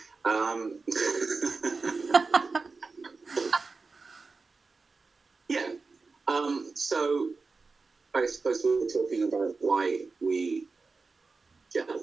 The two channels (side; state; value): left; quieter; 4.2 dB